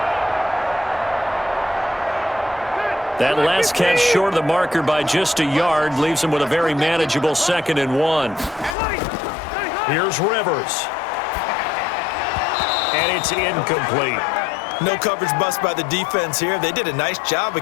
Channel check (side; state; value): right; drops out; at 8.8 s